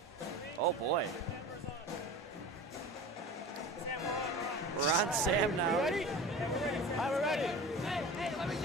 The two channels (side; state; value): both; normal; correlation 0.36